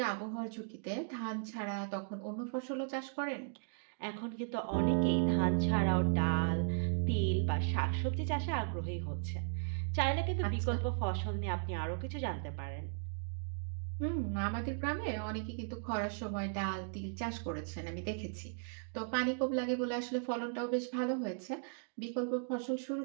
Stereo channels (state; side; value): silent; left; digital silence